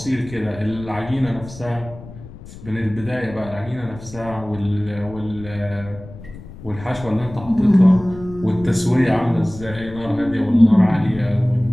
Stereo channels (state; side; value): noise; left; rumble, 16 dB below the sound